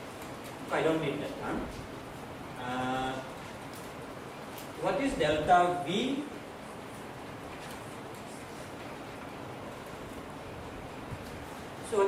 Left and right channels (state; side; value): identical; both; correlation 1.00